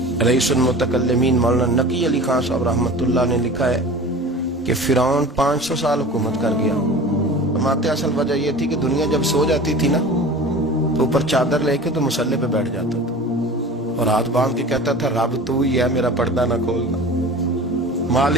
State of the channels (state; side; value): normal; both; correlation 0.38